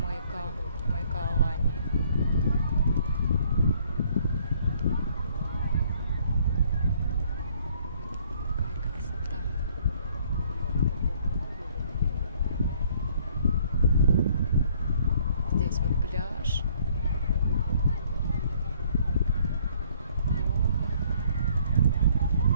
Алании. Какая красота. Здесь вот пляж.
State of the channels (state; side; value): inverted; both; correlation -0.62